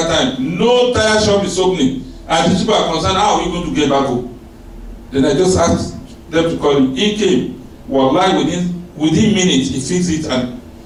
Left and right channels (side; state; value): both; identical; correlation 1.00